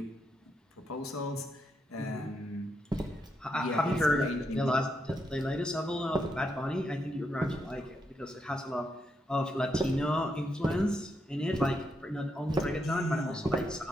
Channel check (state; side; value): normal; both; correlation 0.81